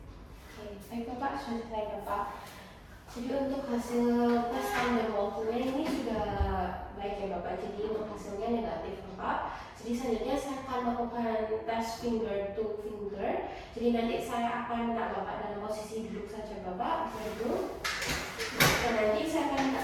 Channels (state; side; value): identical; both; correlation 1.00